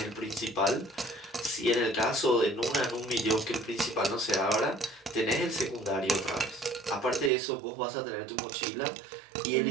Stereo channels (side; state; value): left; drops out; at 7.3 s